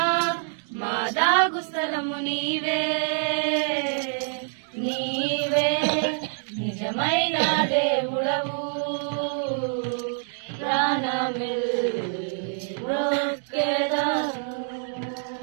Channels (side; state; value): left; silent; 61 dB below the other